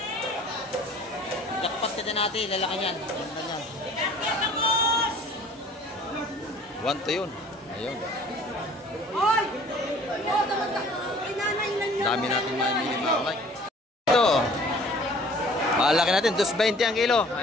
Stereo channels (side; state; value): both; normal; correlation 0.51